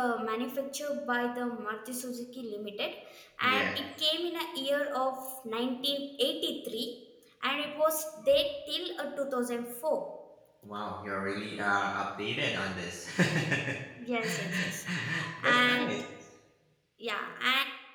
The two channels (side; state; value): both; identical; correlation 1.00